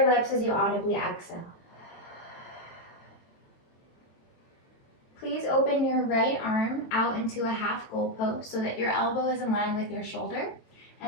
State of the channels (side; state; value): right; late; 22 ms